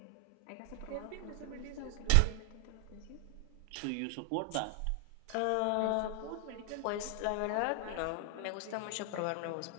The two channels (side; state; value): both; different; correlation 0.00